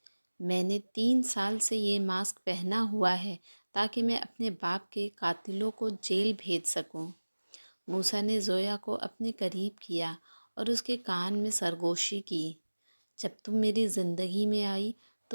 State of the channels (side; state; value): both; inverted; correlation -1.00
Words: میں نے 3 سال سے یہ ماسک پہنا ہوا ہے تاکہ میں اپنے باپ کے قاتلوں کو جیل بھیج سکوں۔ موسیٰ نے زویا کو اپنے قریب کیا اور اس کے کان میں سرگوشی کی۔ جب تم میری زندگی میں آئی